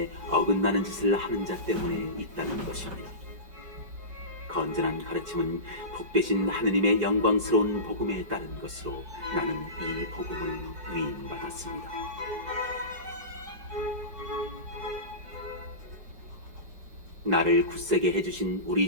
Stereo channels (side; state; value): left; late; 5.1 ms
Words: 어긋나는 짓을 하는 자 때문에 있다는 것입니다. 건전한 가르침은 복되신 하느님의 영광스러운 복음에 따른 것으로 나는 이 복음을 위임받았습니다. 나를 굳세게 해주신 우리